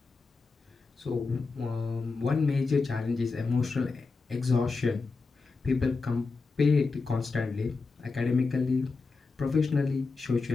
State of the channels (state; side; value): quieter; right; 4.2 dB